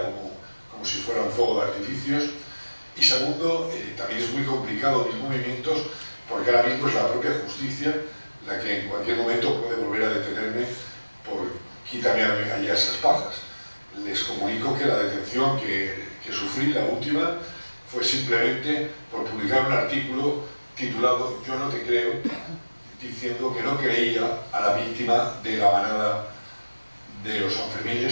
como si fuera un fuego de artificios. Y segundo, también es muy complicado mis movimientos, porque ahora mismo es la propia justicia la que en cualquier momento puede volver a detenerme por quítame allá esas pajas. Les comunico que la detención que sufrí, la última, fue simplemente por publicar un artículo titulado "Yo no te creo", diciendo que no creía a la víctima de la manada de los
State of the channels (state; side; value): inverted; both; correlation -1.00